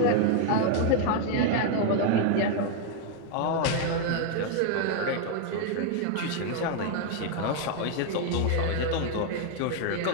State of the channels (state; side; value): different; both; correlation 0.00